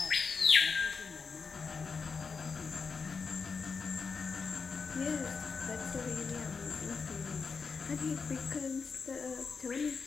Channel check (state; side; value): quieter; right; 5.2 dB